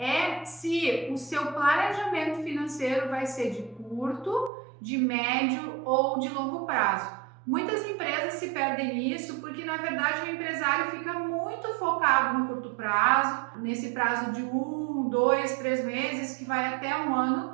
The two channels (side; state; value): left; drops out; at 4.5 s